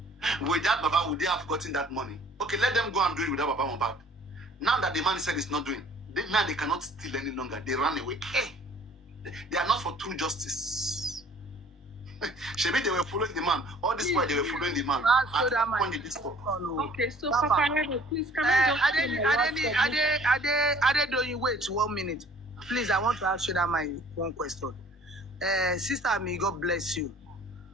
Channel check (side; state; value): both; normal; correlation 0.54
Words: Without Baba, would they have gotten that money? Okay, let them go and do it without Baba Mohbad. Now that the man said it's not doing, now they cannot steal any longer. They run away. Hey, they are not for true justice. Maybe they were following the man. All this while they were following the man. Okay, so Papariano, please come on. Wait 1 minute. Please, I want to ask you that my one question. Sister Ami, God bless you.